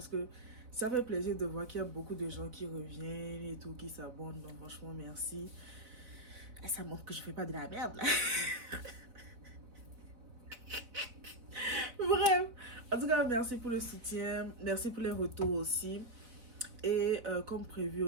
que ça fait plaisir de voir qu'il y a beaucoup de gens qui reviennent et tout, qui s'abonnent. Donc franchement, merci. Et ça montre que je fais pas de la merde là. Bref. En tout cas, merci pour le soutien. Merci pour les retours aussi. Et comme prévu,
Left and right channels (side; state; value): left; late; 4.0 ms